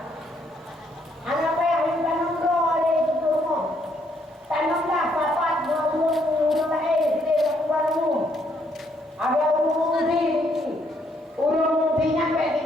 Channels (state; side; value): normal; both; correlation 0.71